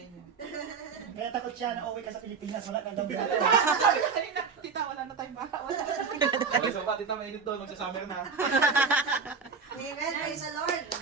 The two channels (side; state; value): left; quieter; 5.4 dB